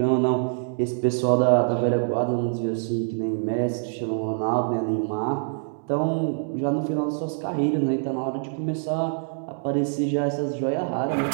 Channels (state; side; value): silent; left; digital silence